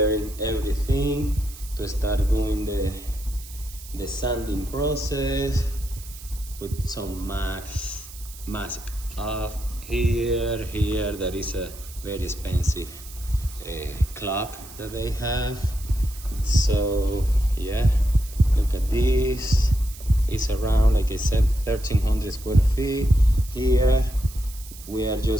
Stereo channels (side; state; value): right; noise; hiss, 17 dB below the sound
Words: everything to start doing the sanding process. Put some mask off here. There is a very expensive clock that they have. So yeah, look at this. It's around, like I said, 1,300 square feet. Here we are